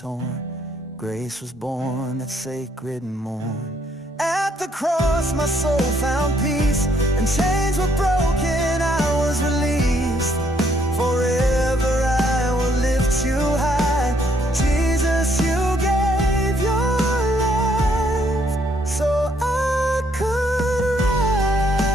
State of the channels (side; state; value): both; normal; correlation 0.69